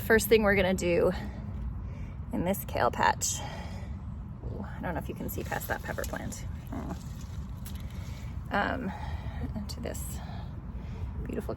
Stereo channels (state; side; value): identical; both; correlation 1.00